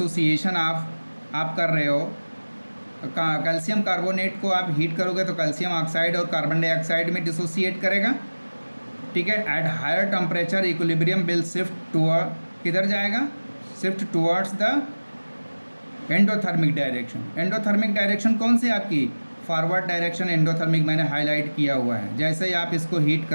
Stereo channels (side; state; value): both; inverted; correlation -1.00